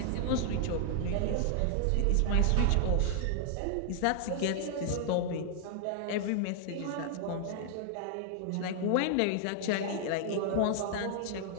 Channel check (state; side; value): different; both; correlation 0.00